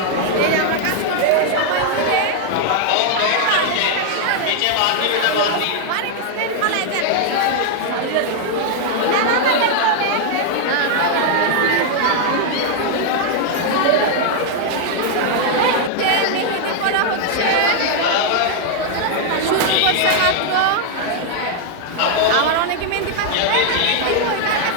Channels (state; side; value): different; both; correlation 0.00